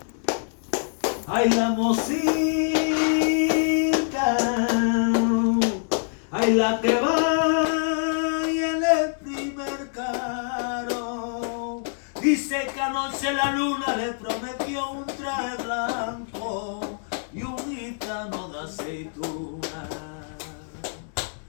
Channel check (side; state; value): right; silent; digital silence